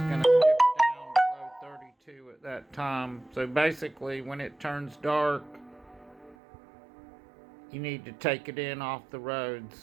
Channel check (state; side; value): drops out; left; at 6.4 s